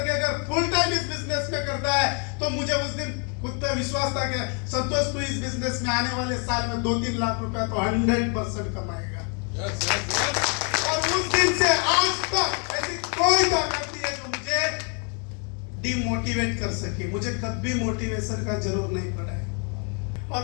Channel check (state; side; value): quieter; right; 38.4 dB